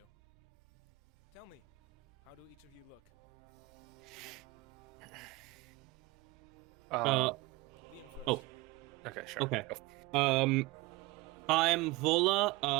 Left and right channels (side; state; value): left; quieter; 21.6 dB